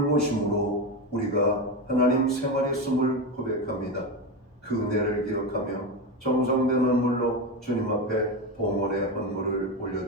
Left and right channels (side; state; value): both; normal; correlation 0.16